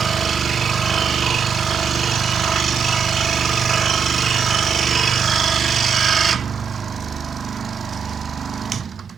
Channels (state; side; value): quieter; left; 6.4 dB